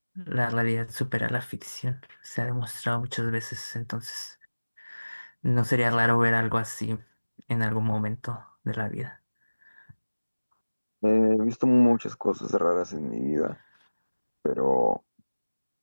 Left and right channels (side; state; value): both; inverted; correlation -1.00